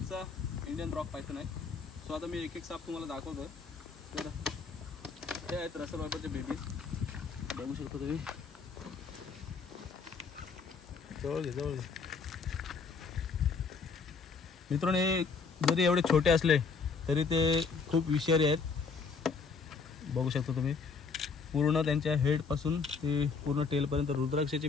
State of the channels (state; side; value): quieter; right; 5.0 dB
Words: इंडियन रॉक पायथन आहे। सो आता मी एक एक साप तुम्हाला दाखवतो। तर हे आहेत रसल वायपरचे बेबी, बघू शकता तुम्ही। जवळ घे मित्रांनो, हे जरी एवढे छोटे असले तरी ते खूप विषारी आहेत। बघू शकता तुम्ही, पूर्ण त्यांच्या हेड पासून ते पूर्ण टेल पर्यंत रुद्राक्षाची